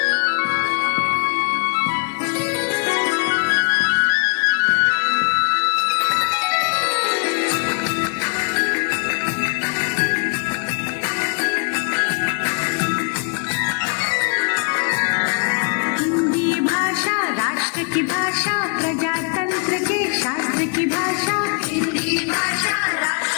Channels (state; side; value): quieter; right; 38.0 dB